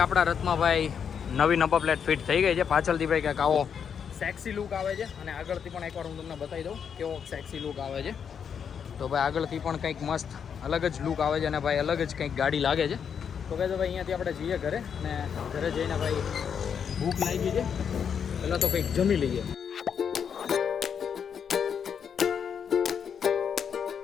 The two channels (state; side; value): quieter; right; 7.4 dB